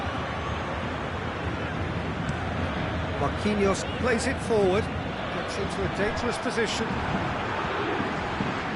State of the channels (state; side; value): identical; both; correlation 1.00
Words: Marquinhos plays it forward, gets into a dangerous position.